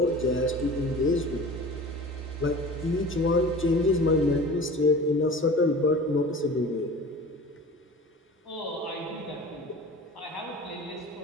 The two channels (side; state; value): both; normal; correlation 0.39